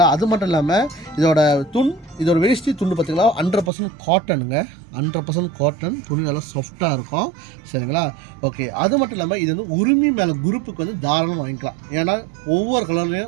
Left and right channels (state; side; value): drops out; left; at 3.7 s